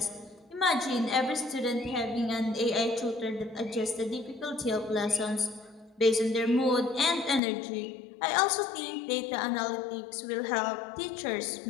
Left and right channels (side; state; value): right; drops out; at 7.4 s